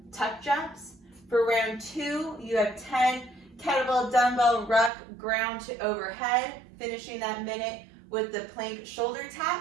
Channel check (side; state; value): left; drops out; at 4.9 s